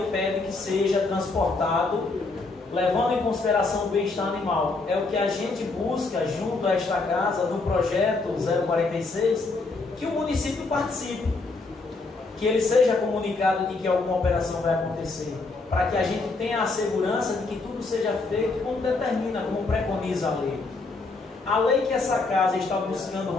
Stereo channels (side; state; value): right; quieter; 3.7 dB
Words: pede que seja transportado levando em consideração o bem-estar animal. É o que a gente busca junto a esta casa no projeto 046, que o município participe, que ele seja comunicado de que alguma operação vai acontecer, para que a gente tenha a segurança de que tudo seja feito como determina, como preconiza a lei. A lei que essa casa está buscando